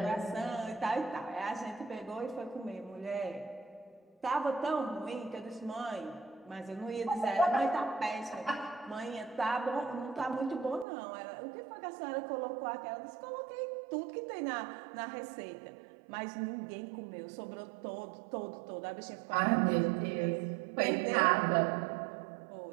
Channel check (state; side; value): drops out; left; at 10.9 s